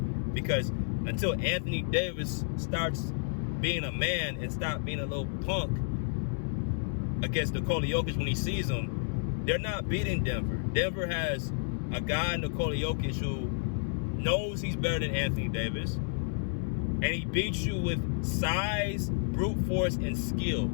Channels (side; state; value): right; silent; 57 dB below the other